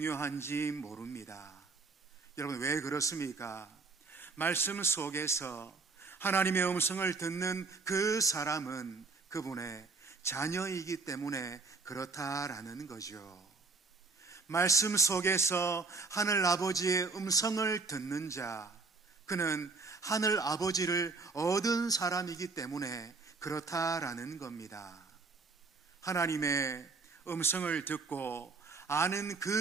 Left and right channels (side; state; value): left; quieter; 4.2 dB